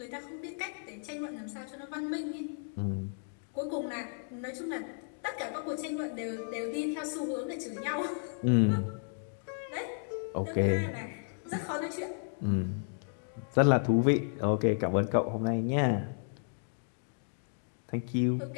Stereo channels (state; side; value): silent; right; digital silence